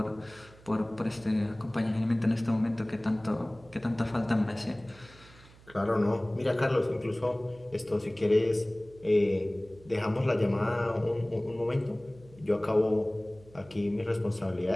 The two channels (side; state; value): right; noise; hum, 24 dB below the sound